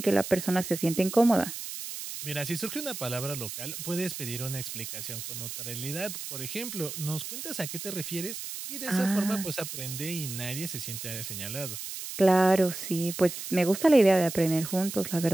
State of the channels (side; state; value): right; noise; hiss, 8 dB below the sound